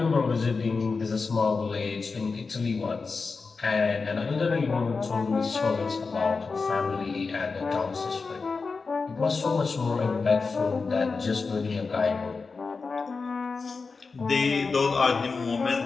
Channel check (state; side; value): quieter; right; 4.5 dB